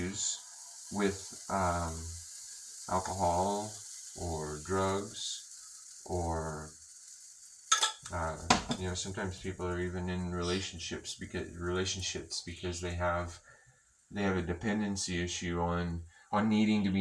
with alcohol or drugs, or sometimes people are even in relationships because they have a dependency issue on needing to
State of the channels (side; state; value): both; identical; correlation 1.00